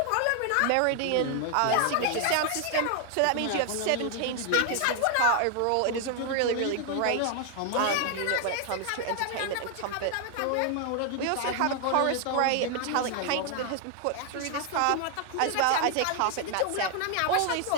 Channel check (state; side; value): different; both; correlation 0.00